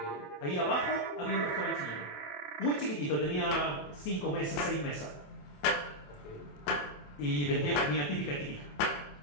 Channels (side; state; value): right; late; 28 ms